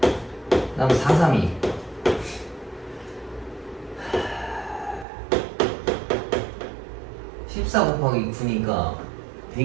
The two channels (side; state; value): left; drops out; at 5.1 s